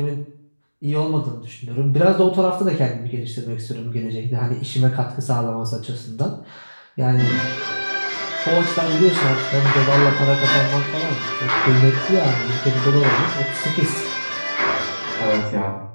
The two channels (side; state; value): both; inverted; correlation -1.00